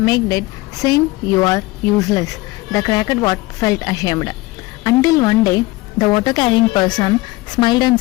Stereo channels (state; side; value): quieter; right; 20.9 dB